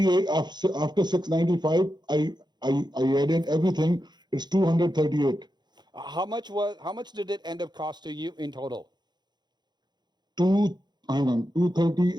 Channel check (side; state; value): left; late; 0.21 ms